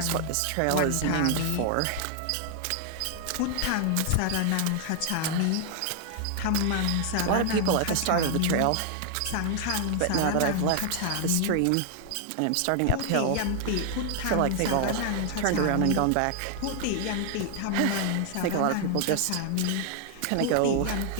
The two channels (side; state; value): both; different; correlation 0.00